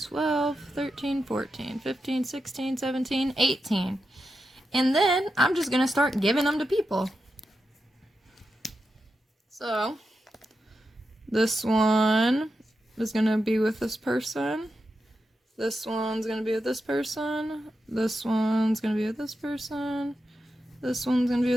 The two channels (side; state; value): both; normal; correlation 0.88